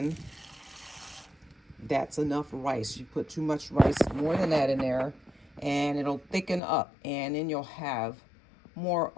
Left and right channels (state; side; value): drops out; right; at 6.6 s